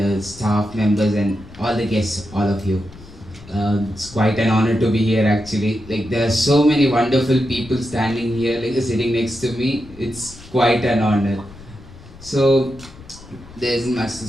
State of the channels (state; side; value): noise; left; rumble, 19 dB below the sound